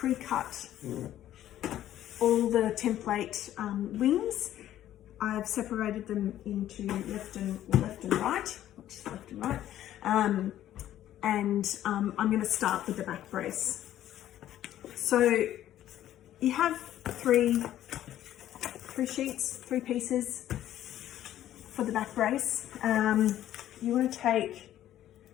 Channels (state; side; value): quieter; right; 12.4 dB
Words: all the template wings. I've separated them into left and right, and I'm going to start with the back brace. So you have three pieces for the back brace. You want to take